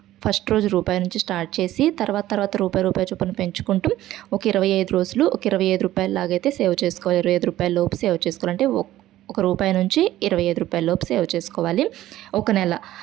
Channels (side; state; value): left; quieter; 14.4 dB